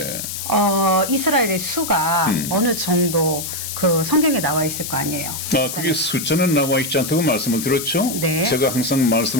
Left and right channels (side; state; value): left; noise; hiss, 6 dB below the sound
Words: 이스라엘의 수가 어느 정도 그 성경에 나와 있을 거 아니에요. 그게 숫자는 나와 있지 않다고 말씀을 드렸죠. 네. 제가 항상